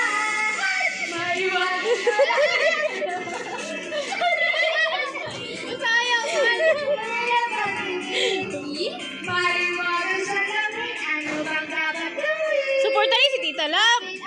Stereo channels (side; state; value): both; identical; correlation 1.00